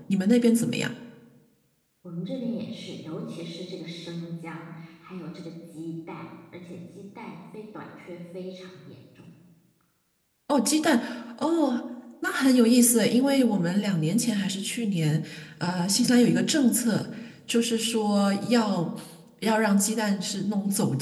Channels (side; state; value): both; identical; correlation 1.00